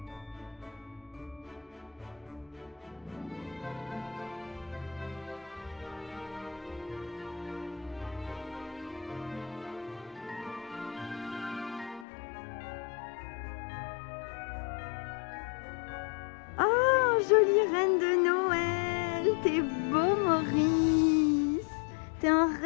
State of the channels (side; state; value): right; drops out; at 12.1 s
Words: Jolie reine de Noël, t'es beau Maurice, t'es un